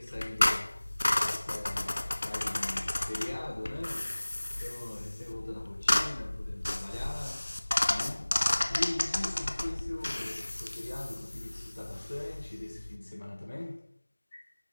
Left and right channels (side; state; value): both; inverted; correlation -1.00